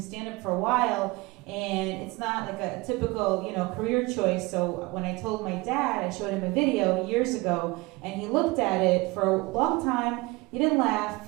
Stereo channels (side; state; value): left; quieter; 23.3 dB